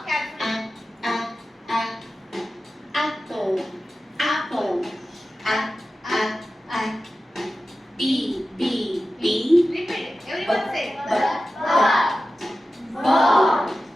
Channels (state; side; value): normal; both; correlation 0.94